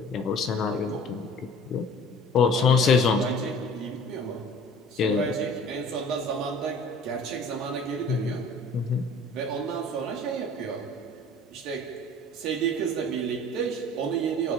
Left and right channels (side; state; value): both; normal; correlation 0.46